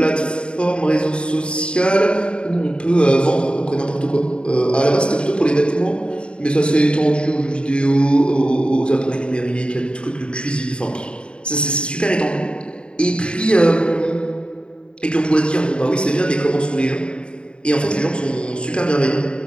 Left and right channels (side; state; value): right; late; 0.054 ms